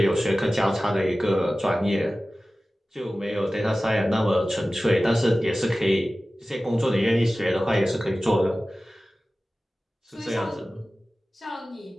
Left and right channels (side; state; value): both; normal; correlation 0.96